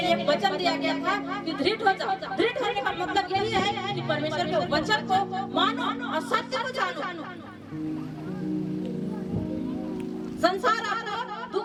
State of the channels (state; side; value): identical; both; correlation 1.00